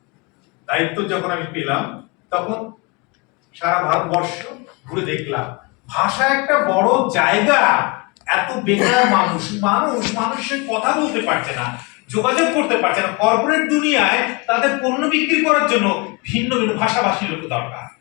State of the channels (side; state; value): right; quieter; 28.6 dB